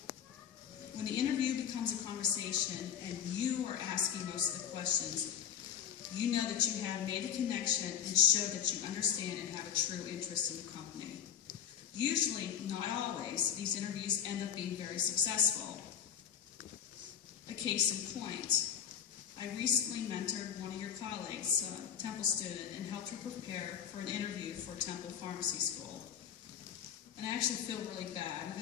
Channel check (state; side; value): quieter; right; 8.8 dB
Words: When the interview becomes a conversation and you are asking most of the questions, you know that you have made a connection and show that you understand and have a true interest in the company. Usually, not always, these interviews end up being very successful. A case in point, I recently mentored one of your colleagues, a Temple student, and helped her prepare for an interview for Temple Pharmacy School. And I actually feel really bad